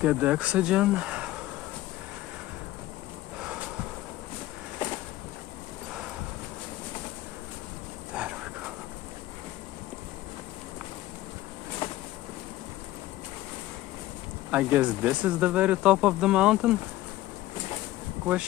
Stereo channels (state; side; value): quieter; right; 16.1 dB